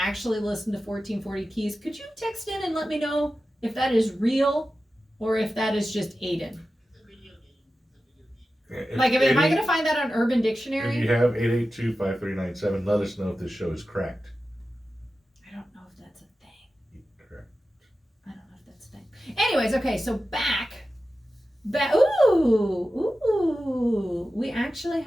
listen to 1440 Keys, could you text in and let me know if that is real or if that is just Aiden? It's a video game. Like, am I going to find that on Urban If Dictionary? you have 882-5397, let us know if this show is cracked. I don't know if that's a thing. Correct. I don't know if that's a thing. Anyways, okay, so back. Ooh, we actually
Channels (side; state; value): both; normal; correlation 0.93